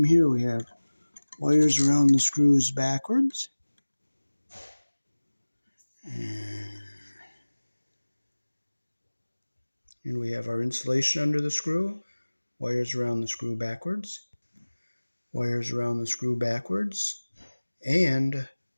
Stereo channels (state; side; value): inverted; both; correlation -1.00